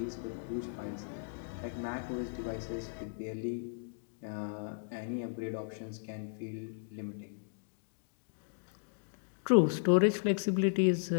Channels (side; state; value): right; silent; digital silence